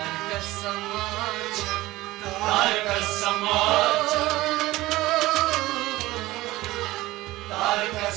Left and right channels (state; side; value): quieter; left; 18.1 dB